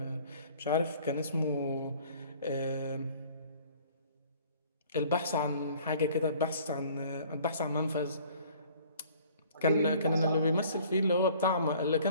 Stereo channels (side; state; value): both; inverted; correlation -0.53